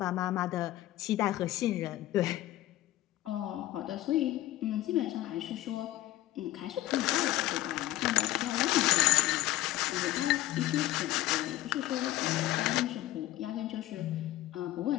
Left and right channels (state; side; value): quieter; right; 15.5 dB